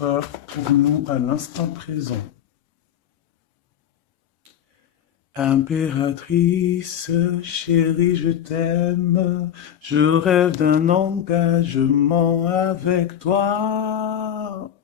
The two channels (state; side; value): quieter; right; 9.7 dB